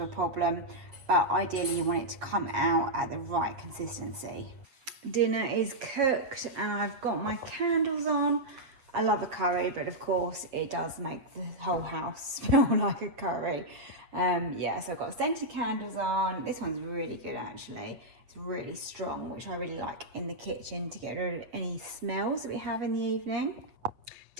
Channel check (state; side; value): late; left; 7.6 ms